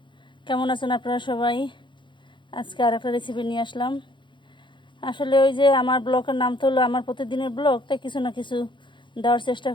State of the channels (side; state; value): right; late; 0.23 ms